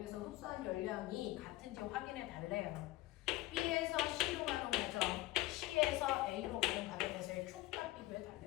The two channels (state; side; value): quieter; right; 17.8 dB